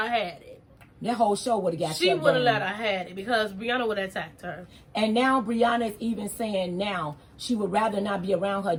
had it. that whole show would have got She shut would have down. let her had it because Brianna would have attacked her. And now Brianna is even saying now she would rather not be around her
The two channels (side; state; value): both; identical; correlation 1.00